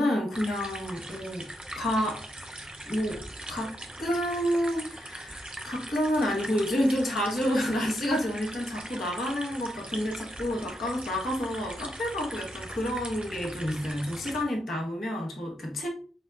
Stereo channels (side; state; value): both; normal; correlation 0.81